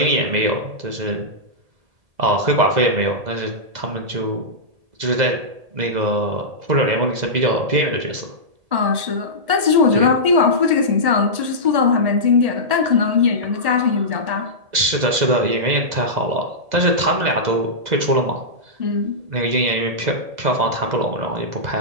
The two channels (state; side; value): late; left; 2.0 ms